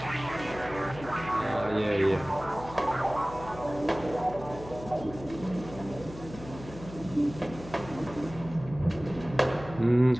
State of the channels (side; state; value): left; noise; hum, 14 dB below the sound